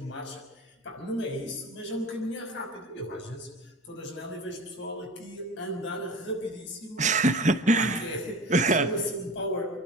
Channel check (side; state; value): both; normal; correlation 0.35